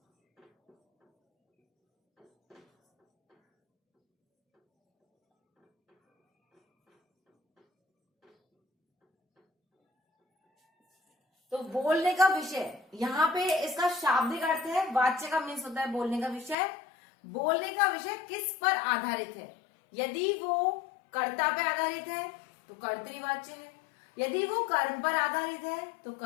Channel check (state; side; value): drops out; right; at 16.6 s